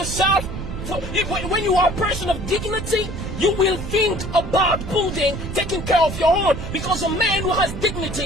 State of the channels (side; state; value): right; noise; rumble, 7 dB below the sound